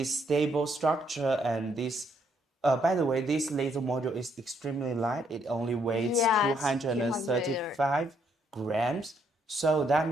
stable structure and this by the way, this laser module is extremely light. It only weighs Yes, 235 grams. So that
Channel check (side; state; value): both; normal; correlation 0.72